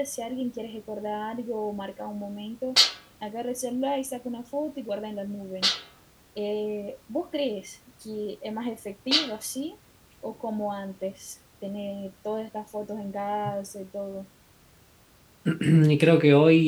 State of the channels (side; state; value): both; identical; correlation 1.00